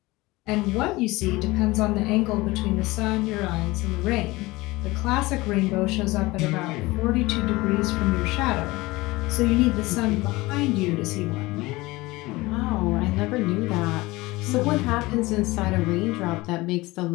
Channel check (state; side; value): quieter; right; 20.9 dB